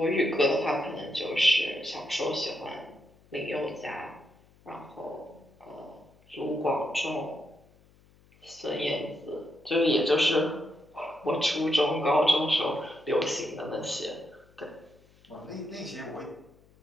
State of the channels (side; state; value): left; noise; hum, 29 dB below the sound